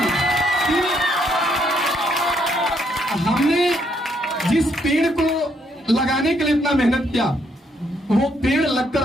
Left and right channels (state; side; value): normal; both; correlation 0.72